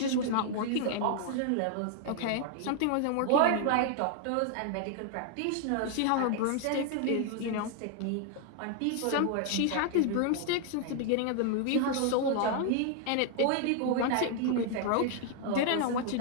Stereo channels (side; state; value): both; different; correlation 0.00